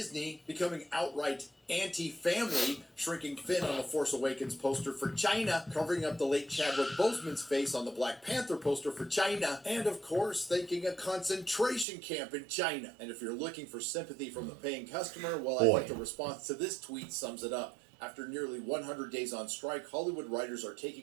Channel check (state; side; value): drops out; left; at 11.9 s